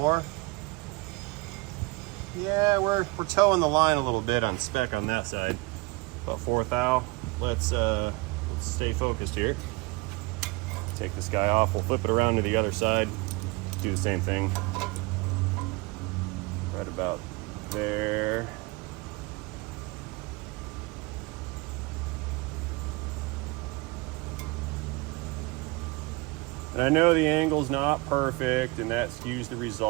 Yeah, we're towing the line a little bit on spec on that side. About 4 thou. Let's stay focused here. Take this guy off. We'll flip it around to the other side. Do the same thing. Right about there. And I know the angle's not perfect and that skews the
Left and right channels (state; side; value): quieter; left; 25.3 dB